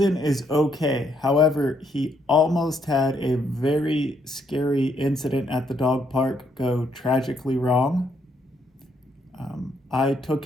is okay. However, he almost had a very scary incident at the dog park go tragically wrong. I took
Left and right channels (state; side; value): normal; both; correlation 0.73